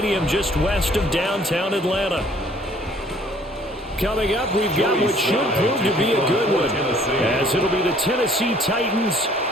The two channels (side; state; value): both; normal; correlation 0.57